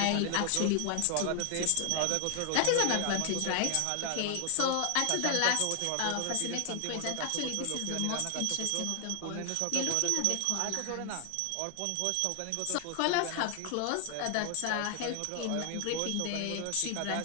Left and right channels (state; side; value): different; both; correlation 0.00